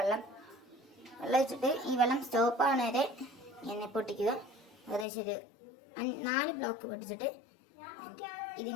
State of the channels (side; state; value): right; drops out; at 5.1 s